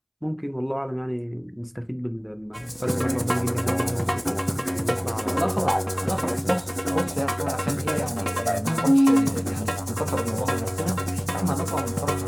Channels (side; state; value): both; identical; correlation 1.00